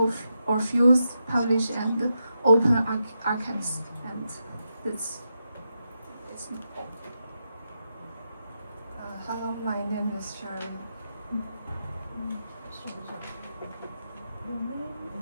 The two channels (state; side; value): inverted; both; correlation -0.86